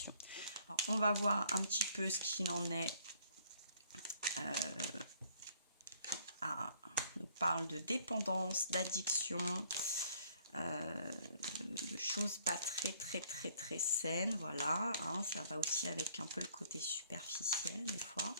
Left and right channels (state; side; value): inverted; both; correlation -0.61